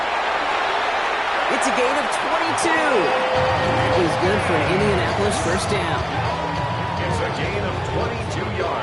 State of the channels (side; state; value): both; identical; correlation 1.00